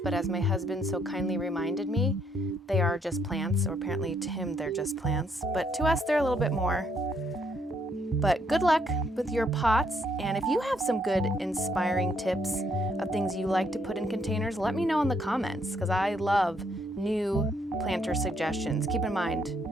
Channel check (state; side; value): normal; both; correlation 0.71